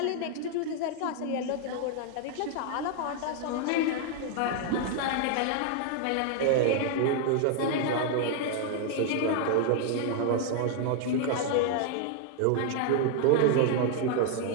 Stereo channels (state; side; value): different; both; correlation 0.00